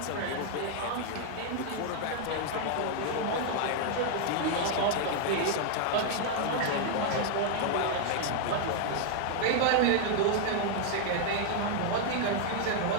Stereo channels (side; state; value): both; different; correlation 0.00